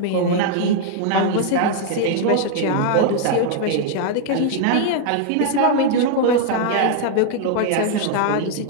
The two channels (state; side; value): different; both; correlation 0.00